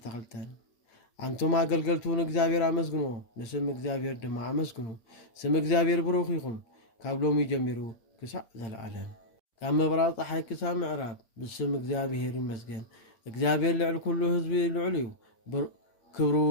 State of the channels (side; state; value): right; late; 8.7 ms